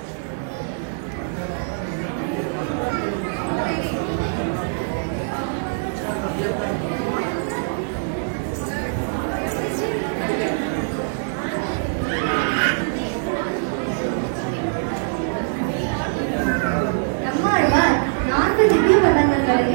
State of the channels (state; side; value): silent; left; digital silence